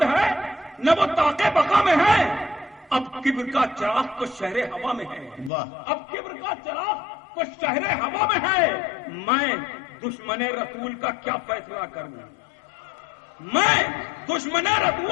ہے نہ وہ طاقے بقا میں ہے، اب کبر کا چراغ کو شہر ہوا میں ہے، واہ، اب کبر کا چراغ کو شہر ہوا میں ہے۔ میں دشمن رسول کا کیا فیصلہ کروں، میں دشمن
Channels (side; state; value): right; drops out; at 5.5 s